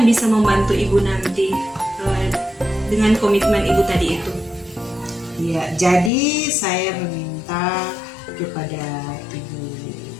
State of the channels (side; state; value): right; drops out; at 6.1 s